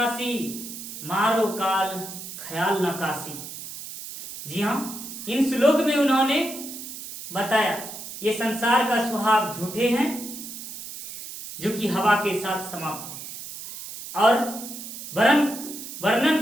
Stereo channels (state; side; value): noise; right; hiss, 10 dB below the sound